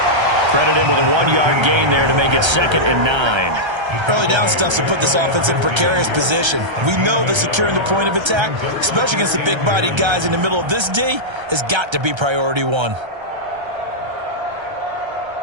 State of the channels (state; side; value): late; left; 1.3 ms